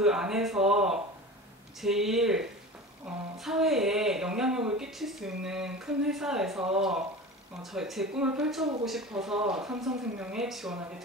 안에서 제일 사회에 영향력을 끼칠 수 있는 큰 회사에서 제 꿈을 펼쳐보고 싶어서 삼성생명에 지원하게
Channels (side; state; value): both; normal; correlation 0.33